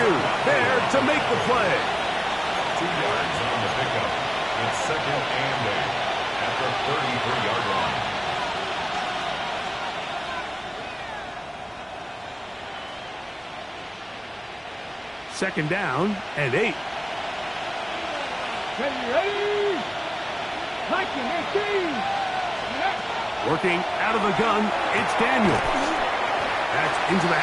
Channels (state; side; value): identical; both; correlation 1.00